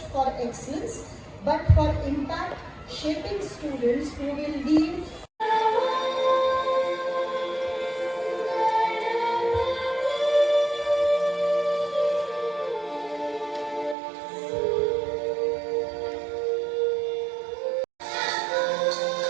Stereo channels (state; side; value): drops out; left; at 14.0 s